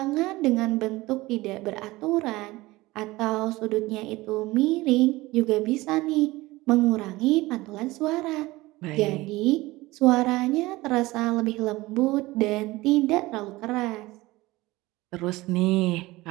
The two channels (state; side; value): quieter; left; 19.7 dB